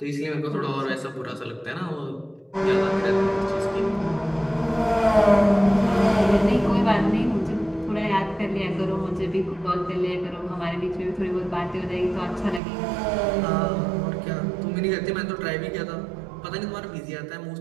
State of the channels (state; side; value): drops out; left; at 12.6 s